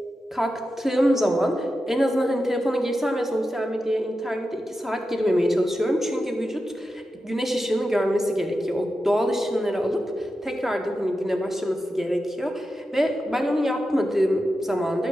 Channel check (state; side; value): normal; both; correlation 0.90